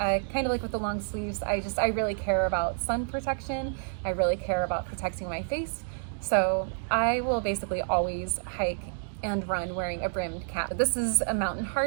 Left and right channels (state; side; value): silent; left; digital silence